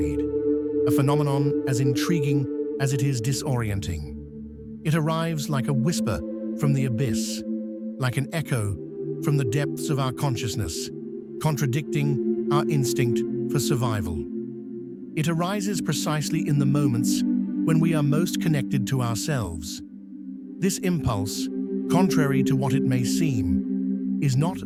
a phenomenon as intriguing as it is disorienting. It arrives like a whisper from the abyss, like an echo from the depths of our consciousness, contradicting our instinct for survival. It arises precisely in the moments when we are most connected to ourselves. This impulse, contrary to what it may seem, is not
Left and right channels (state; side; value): identical; both; correlation 1.00